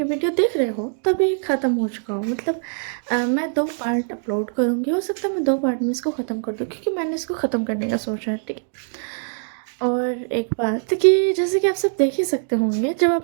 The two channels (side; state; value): left; silent; digital silence